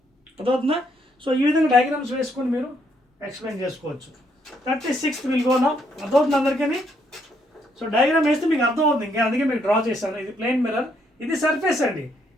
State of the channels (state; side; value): normal; both; correlation 0.73